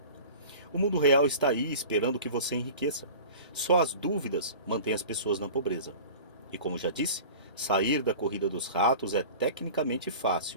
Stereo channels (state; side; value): inverted; both; correlation -0.39